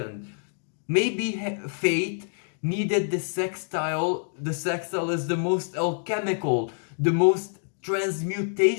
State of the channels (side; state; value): right; silent; digital silence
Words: Maybe fate needed the sextile. The sextile is the most alchemical, the most